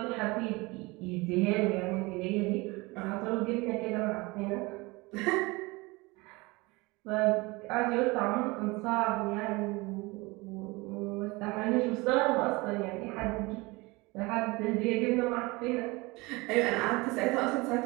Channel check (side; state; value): left; quieter; 23.9 dB